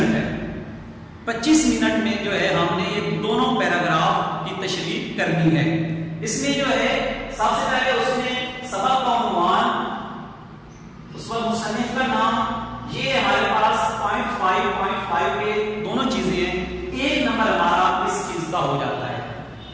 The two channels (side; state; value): both; identical; correlation 1.00